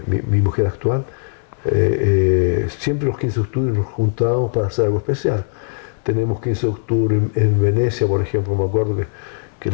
mi mujer actual, siempre los 15 de octubre nos juntábamos para hacer algo especial. Tenemos 15 de octubre en Venecia, por ejemplo, me acuerdo que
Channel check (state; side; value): silent; right; 62 dB below the other